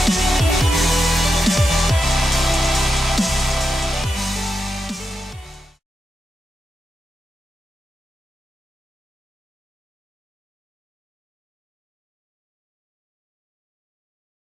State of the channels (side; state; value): both; normal; correlation 0.87